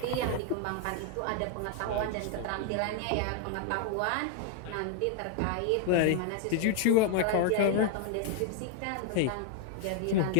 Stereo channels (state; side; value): different; both; correlation 0.00